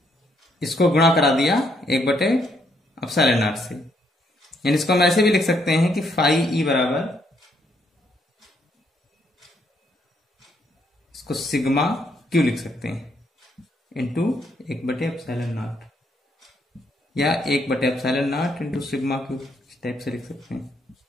इसको गुणा करा दिया 1/ε0 से। यानी इसको हम ऐसे भी लिख सकते हैं कि फाई ई बराबर, इसको सिग्मा क्यू लिख सकते हैं इंटू 1/ε0 या 1/ε0 इंटू सिग्मा क्यू, इस टाइप से लिख सकते हैं।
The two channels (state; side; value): normal; both; correlation 0.73